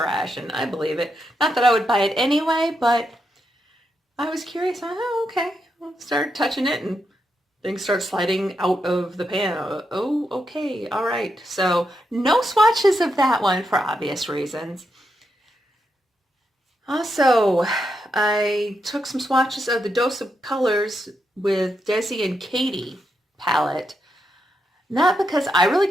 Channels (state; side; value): normal; both; correlation 0.83